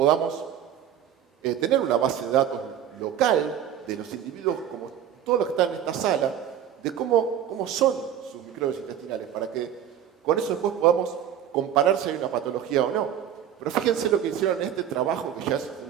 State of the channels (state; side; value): quieter; left; 9.8 dB